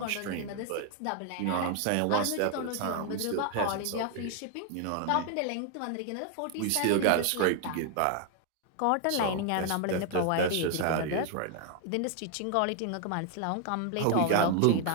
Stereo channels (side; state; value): both; different; correlation 0.00